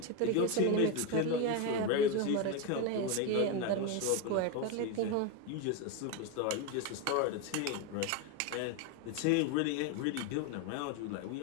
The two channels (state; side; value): different; both; correlation 0.03